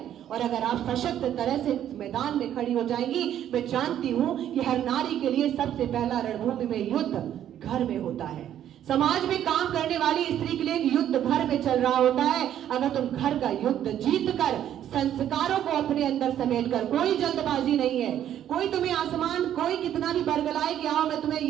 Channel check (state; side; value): quieter; left; 10.8 dB